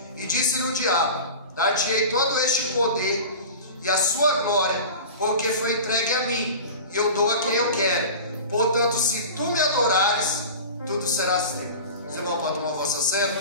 e disse-lhe o diabo: dar-te-ei todo este poder e a sua glória, porque foi entregue a mim, e eu dou a quem eu quero. Portanto, se tu me adorares, tudo será teu. Você vai tomar a vossa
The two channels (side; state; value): both; inverted; correlation -0.34